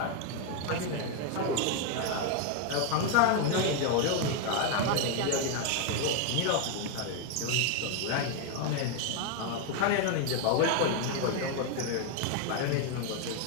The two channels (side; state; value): both; different; correlation 0.01